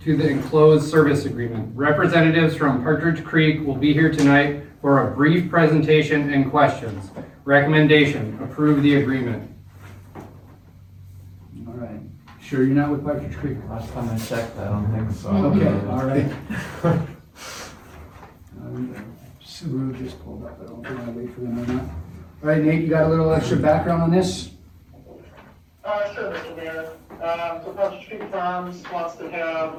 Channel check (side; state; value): both; identical; correlation 1.00